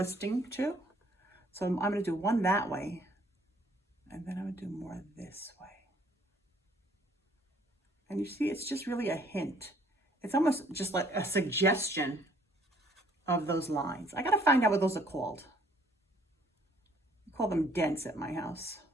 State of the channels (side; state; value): both; normal; correlation 0.61